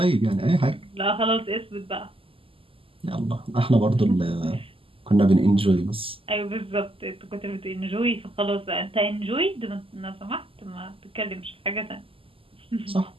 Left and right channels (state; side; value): late; left; 0.26 ms